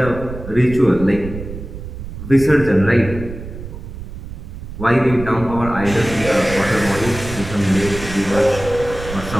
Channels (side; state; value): right; noise; rumble, 11 dB below the sound